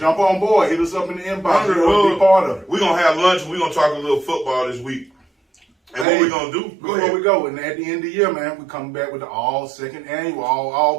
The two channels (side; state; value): left; drops out; at 6.1 s